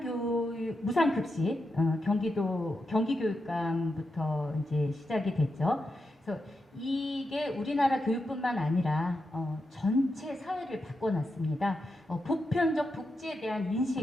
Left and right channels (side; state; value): both; normal; correlation 0.87